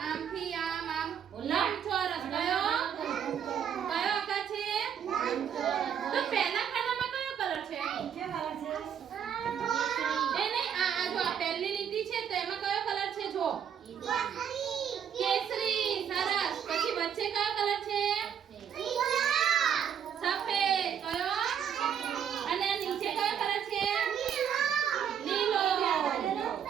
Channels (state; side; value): quieter; left; 8.4 dB